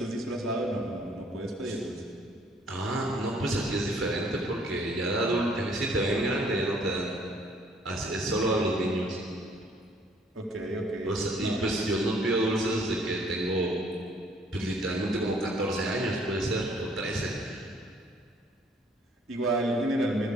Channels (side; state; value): both; normal; correlation 0.61